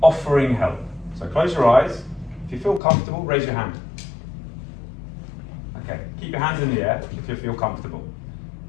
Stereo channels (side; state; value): right; drops out; at 2.8 s